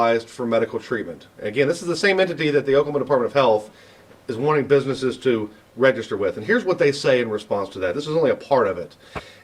for medical treatment? Again, this is the same entity that the Oklahoma Department of Health is wanting businesses to register with. And here's what they say in response to that. This is only a part of it.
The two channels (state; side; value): identical; both; correlation 1.00